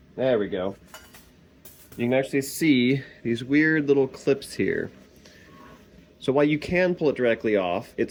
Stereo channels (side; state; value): both; identical; correlation 1.00